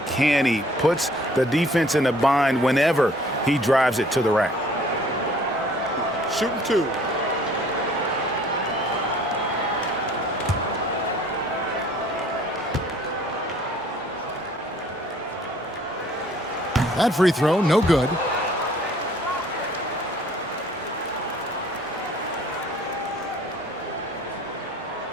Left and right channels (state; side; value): normal; both; correlation 0.55